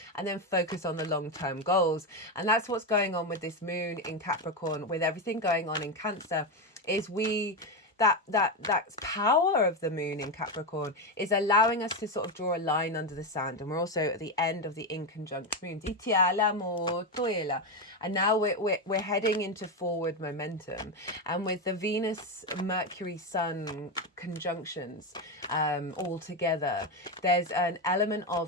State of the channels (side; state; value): both; normal; correlation 0.11